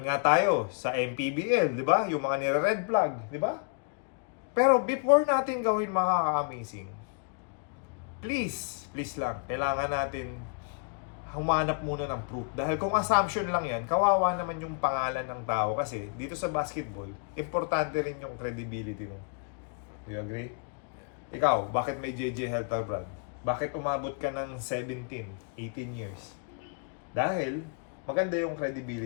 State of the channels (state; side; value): quieter; right; 39.7 dB